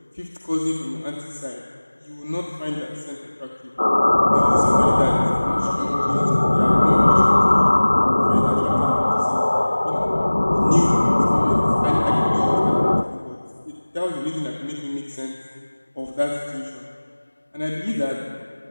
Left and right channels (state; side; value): inverted; both; correlation -1.00